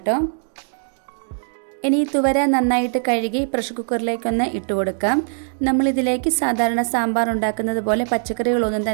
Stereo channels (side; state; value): left; silent; digital silence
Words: ഇനി ഈ തുവര നന്നായിട്ട് കഴുകി പ്രഷർ കുക്കറിലേക്കൊന്ന് ഇട്ട് കൊടുക്കാം. നമ്മളിതിലേക്ക് സാധാരണ സാമ്പാർ ഉണ്ടാക്കുന്നത് പോലെ പച്ചക്കറികളൊന്നും